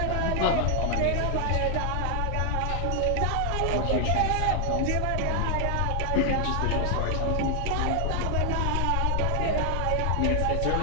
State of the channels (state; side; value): different; both; correlation 0.00